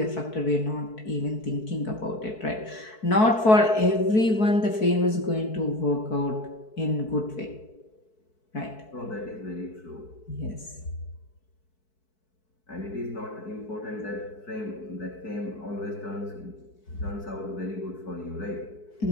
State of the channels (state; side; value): late; right; 4.6 ms